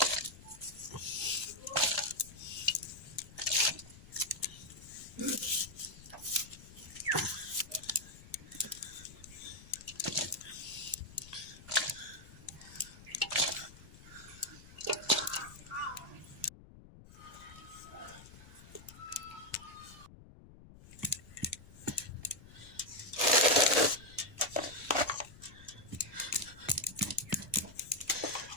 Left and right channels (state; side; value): noise; left; rumble, 19 dB below the sound